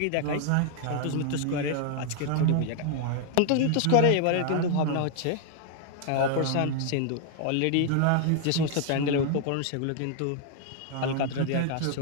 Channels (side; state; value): both; different; correlation 0.00